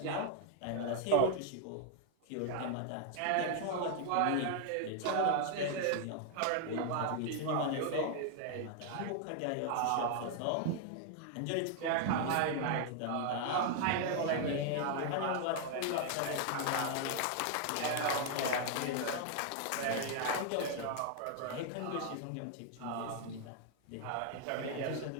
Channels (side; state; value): both; different; correlation 0.00